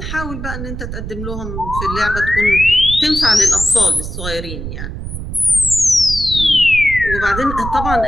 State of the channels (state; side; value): noise; right; rumble, 7 dB below the sound